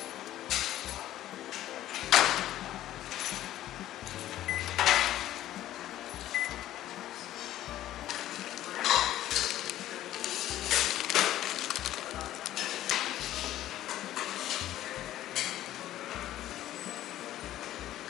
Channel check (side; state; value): right; quieter; 13.4 dB